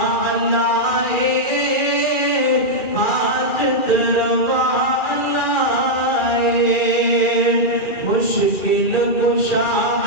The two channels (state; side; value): late; right; 2.4 ms